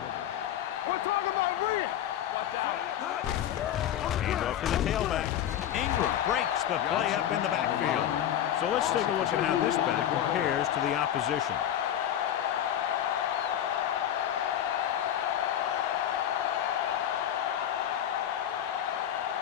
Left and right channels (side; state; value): right; quieter; 10.7 dB